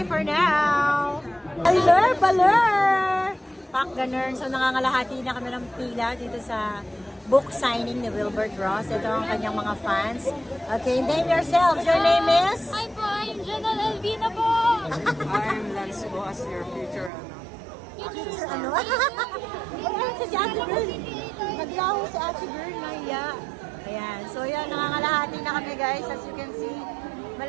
for now! Baler! Pak, ganun. So, nangangalahati na kami ng pila dito sa book signing ni Wilbert Ross. Ito ang kanyang mga fans. Okay, name yourself. Your name is? Hi po, I'm Janelle Elvina po. I'm Lance po as your future Ano? Ayan, si Ate Girl. Naglaho si Ate Girl, Maya. Ayan. So, yan, nangangalahati na kami, guys. As you can see,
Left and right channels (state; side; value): drops out; left; at 17.1 s